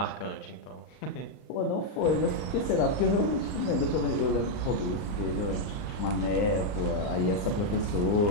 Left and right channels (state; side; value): late; right; 39 ms